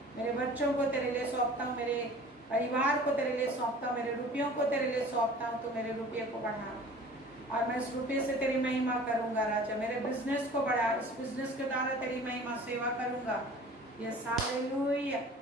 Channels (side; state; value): both; normal; correlation 0.45